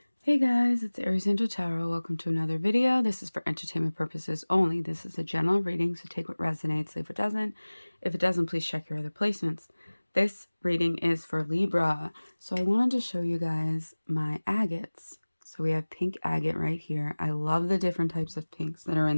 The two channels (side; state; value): both; inverted; correlation -1.00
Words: Hey guys, it's Aries Angel Tarot. Welcome to another video. This is for entertainment purposes only. This is a general reading, so take what resonates, leave what doesn't. If it doesn't, please check your other placements. This reading is for Libra. So I wanted to show you guys my agates. So we have pink agate right here. I love the different types of pinks that are in